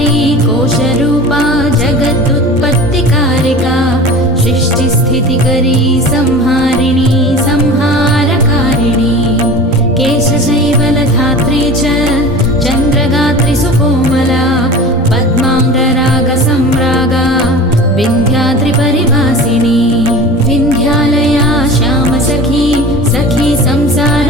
कोशरूपा जगदुत्पत्तिकारिका सृष्टिस्थितिकरी संहारिणी संहारकारिणी केशशैवलधात्री च चन्द्रगात्री सुकोमला पद्माङ्गरागसम्रागा विन्ध्याद्रिपरिवासिनी विन्ध्यालया श्यामसखी सखी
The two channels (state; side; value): normal; both; correlation 0.37